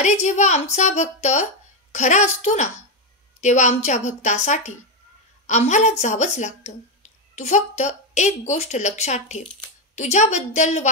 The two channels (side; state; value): both; normal; correlation 0.06